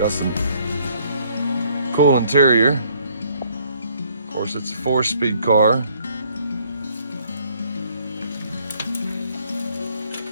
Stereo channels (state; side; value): inverted; both; correlation -0.63